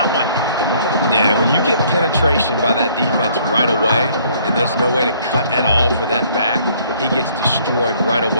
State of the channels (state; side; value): inverted; both; correlation -0.61